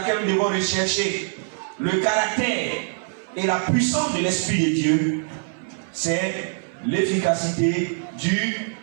nous devons rechercher le caractère et la puissance de l'Esprit de Dieu, c'est l'efficacité du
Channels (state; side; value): silent; left; 60 dB below the other